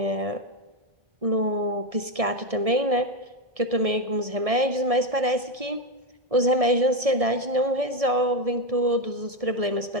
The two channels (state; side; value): late; left; 1.7 ms